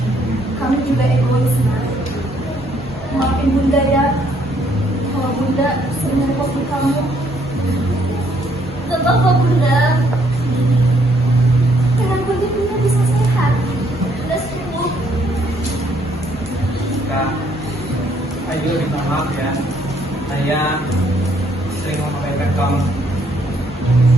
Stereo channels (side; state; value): both; normal; correlation 0.68